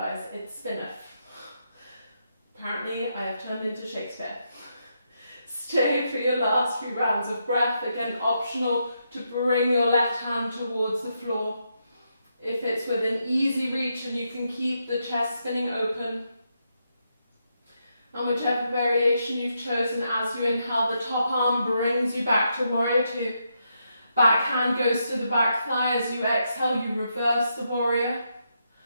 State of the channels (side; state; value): both; inverted; correlation -0.81